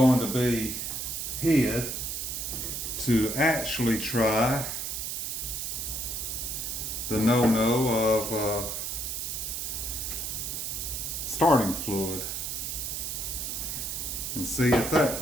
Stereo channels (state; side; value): noise; right; hiss, 3 dB below the sound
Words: to be hid to actually try the no-no of starting fluid and see if that